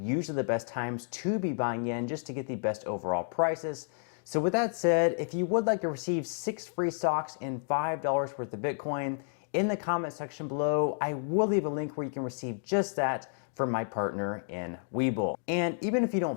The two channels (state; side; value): silent; right; digital silence